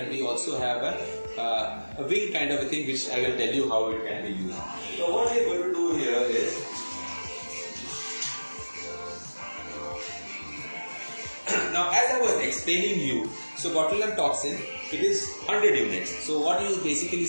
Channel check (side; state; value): both; inverted; correlation -1.00